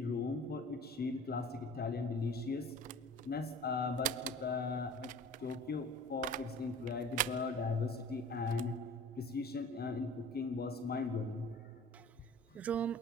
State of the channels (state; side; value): normal; both; correlation 0.44